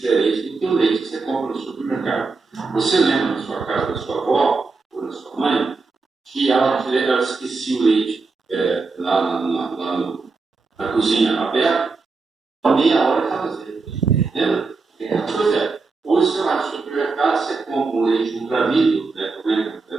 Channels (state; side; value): quieter; left; 4.1 dB